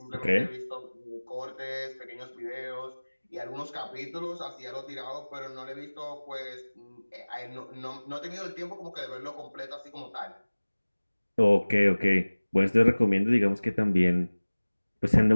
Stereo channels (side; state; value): both; inverted; correlation -1.00